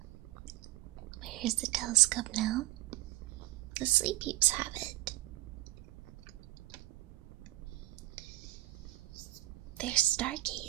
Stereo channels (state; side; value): quieter; left; 17.4 dB